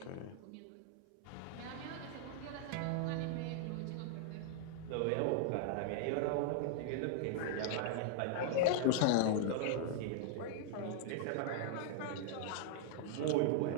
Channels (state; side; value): different; both; correlation -0.01